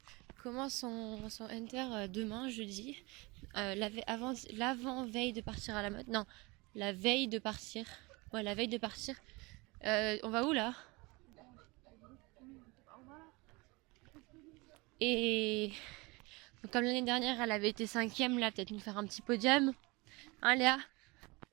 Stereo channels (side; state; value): left; quieter; 25.2 dB